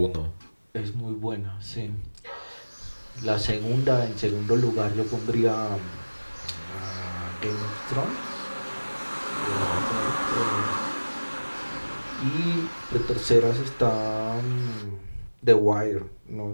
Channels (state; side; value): inverted; both; correlation -1.00